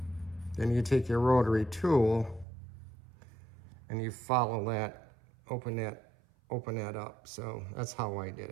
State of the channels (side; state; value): left; drops out; at 2.5 s